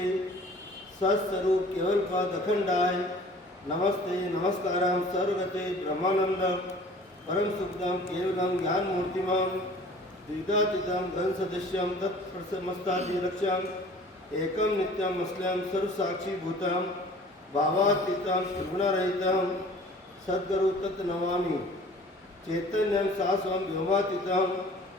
सत्स्वरूप केवल पद अखंडाय नमस्ते नमस्कारम सर्वगते ब्रह्मानंदम परम सुखदम केवलम ज्ञान मूर्तिमम द्विदातीतम घन सदस्यम तत्प्रसमस्तादिलक्ष्यम एकम नित्यम असलम सर्वसाक्षी भूतम भावातीतम त्रिगुणरहितम सद्गुरु तत्नमामि चैतन्यम शाश्वम व्योमातीतम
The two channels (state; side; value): normal; both; correlation 0.48